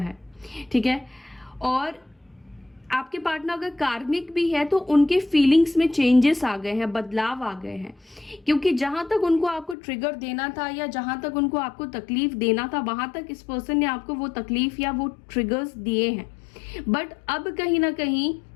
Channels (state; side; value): drops out; right; at 9.8 s